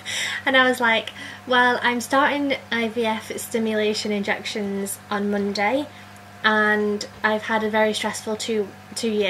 And I was like, well, I'm starting IVF stimulation injections on Monday, and I've had a very stressful two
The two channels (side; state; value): both; identical; correlation 1.00